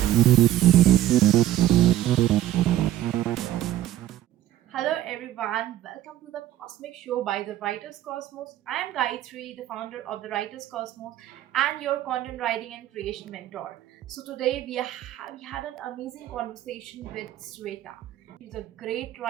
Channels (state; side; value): quieter; left; 13.3 dB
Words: Hello everyone, welcome to the Cosmic Show by the Writers Cosmos. I am Gayatri, the founder of the Writers Cosmos and your content writing and creation mentor. So today we had an amazing conversation with Swetha. She's a great